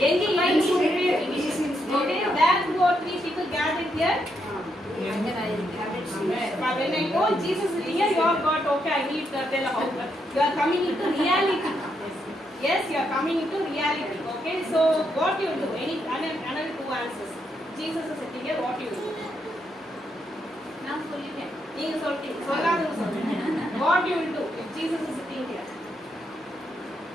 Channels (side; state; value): both; normal; correlation 0.79